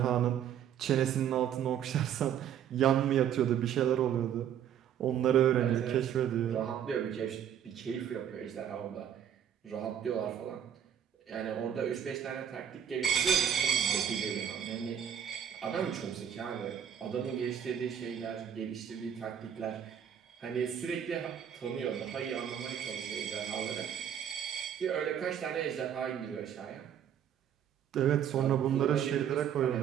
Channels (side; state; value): left; quieter; 9.2 dB